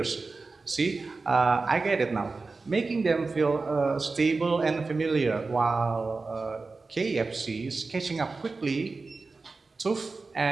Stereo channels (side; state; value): left; quieter; 3.9 dB